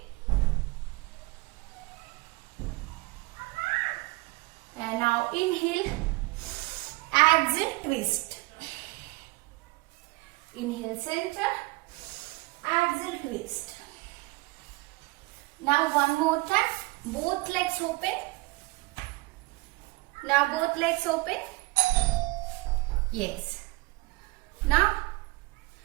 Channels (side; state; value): left; quieter; 23.3 dB